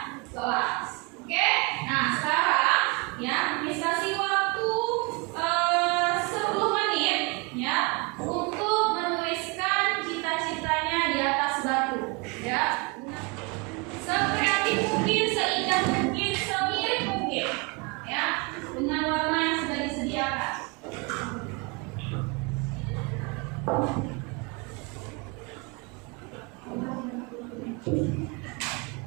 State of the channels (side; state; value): left; quieter; 28.9 dB